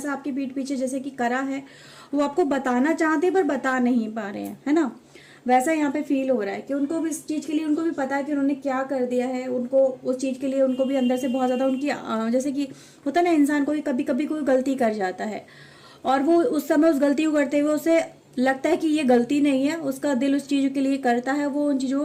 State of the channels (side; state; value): both; identical; correlation 1.00